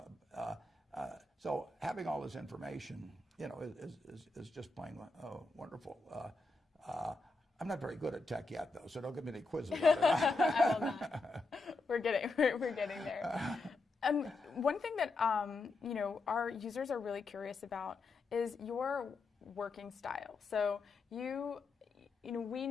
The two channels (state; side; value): quieter; right; 3.4 dB